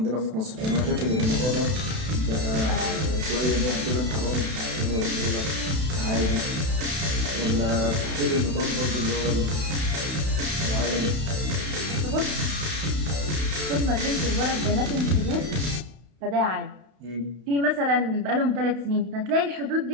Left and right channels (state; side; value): late; left; 32 ms